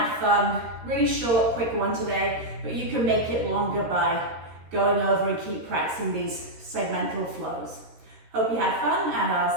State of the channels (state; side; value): late; left; 13 ms